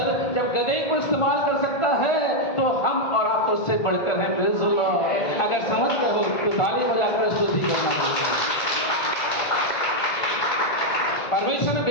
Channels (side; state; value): right; late; 1.5 ms